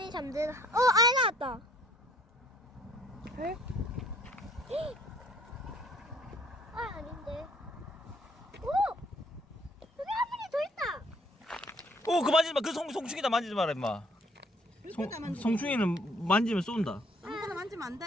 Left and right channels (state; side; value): normal; both; correlation 0.61